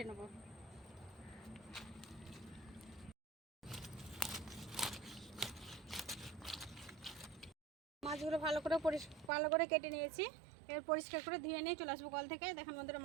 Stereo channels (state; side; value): drops out; left; at 9.3 s